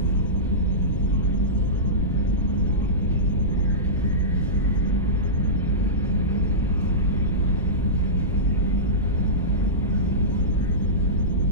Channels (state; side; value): normal; both; correlation -0.17